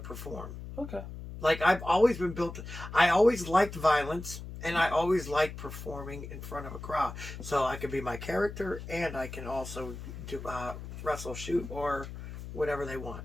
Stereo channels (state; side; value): noise; left; hum, 10 dB below the sound